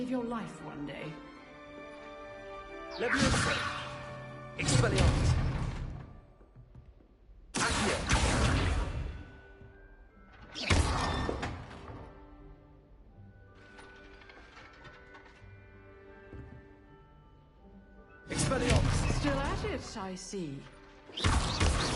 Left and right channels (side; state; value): both; identical; correlation 1.00